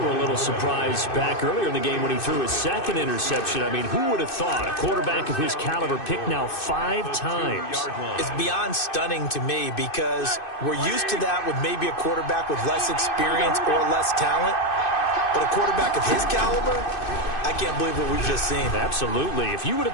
a little surprised back earlier in the game when he threw his second interception. I mean, who would have thought a quarterback of his caliber picked now 5 times? It's beyond stunning to me because we're used to that with maybe a quarterback with less experience or less talent. But a quarterback of his caliber, I can't believe what we've just seen. Absolutely. If you would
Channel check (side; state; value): right; late; 2.6 ms